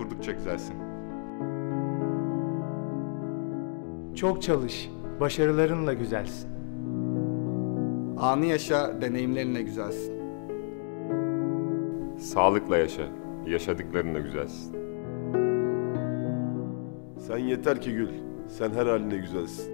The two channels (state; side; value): silent; right; 58 dB below the other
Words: güzelsin. Çok çalış, başarılarınla güzelsin. Anı yaşa, deneyimlerinle güzelsin. Sağlıkla yaşa. Yaşadıklarınla güzelsin. Sen yeter ki gül. Sen her haline güzelsin.